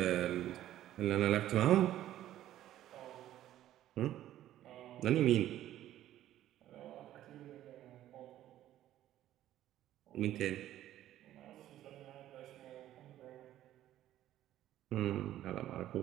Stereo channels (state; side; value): quieter; left; 13.0 dB